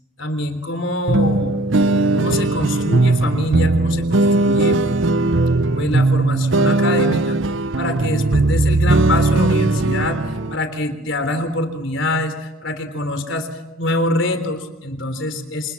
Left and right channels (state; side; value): normal; both; correlation 0.54